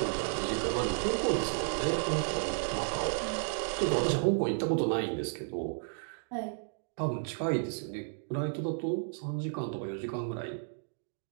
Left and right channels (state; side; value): silent; left; digital silence